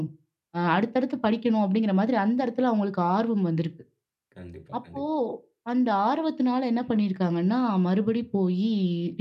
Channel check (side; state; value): both; identical; correlation 1.00